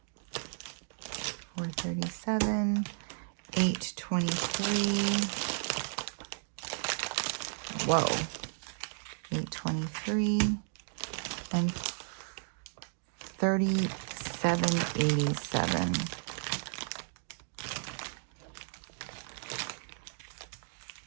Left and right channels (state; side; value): silent; left; digital silence